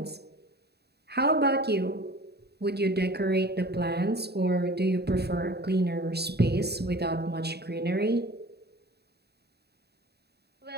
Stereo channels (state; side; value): late; left; 0.47 ms